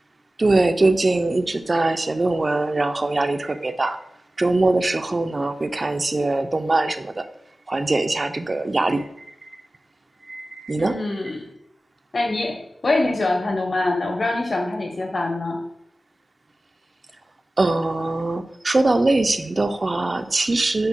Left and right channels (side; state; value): both; normal; correlation 0.96